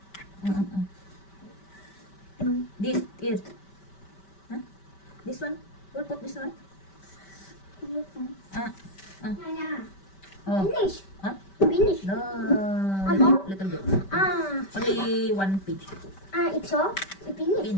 This is. This one. We'll put this one. Finish. Finish. No. Little bit. Only one page. It's all. Finish.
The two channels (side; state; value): right; late; 5.1 ms